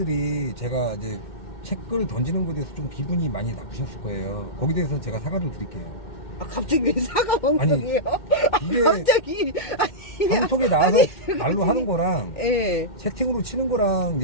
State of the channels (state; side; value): late; right; 2.1 ms